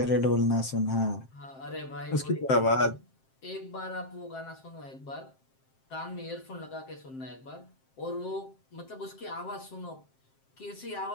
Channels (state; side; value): late; right; 7.6 ms